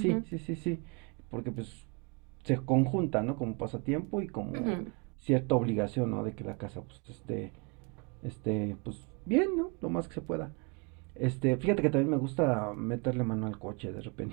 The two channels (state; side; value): quieter; left; 32.1 dB